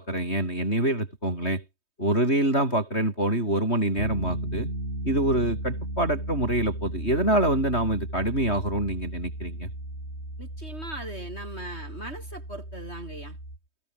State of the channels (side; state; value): right; late; 3.2 ms